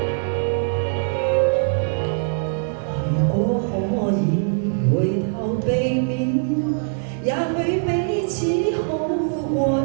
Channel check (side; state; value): left; silent; digital silence